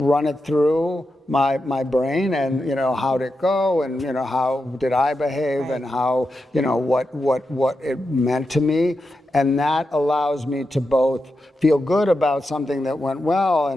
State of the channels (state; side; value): normal; both; correlation 0.88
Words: run it through my brain and, how'd it go and, how did I behave and how, what it meant to me. And that allows me to both feel good about something that went well